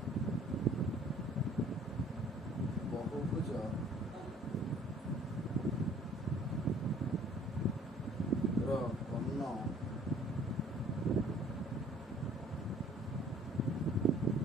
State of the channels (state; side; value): normal; both; correlation 0.55